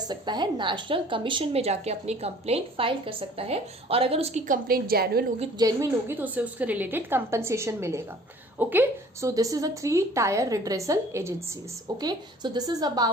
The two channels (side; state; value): both; normal; correlation 0.51